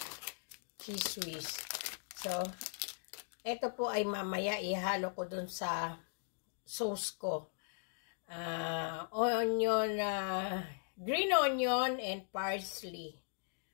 cheese whiz. So, ito po ay mamaya ihalo ko dun sa sauce ko. Onion, green onion and parsley.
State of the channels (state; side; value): silent; right; digital silence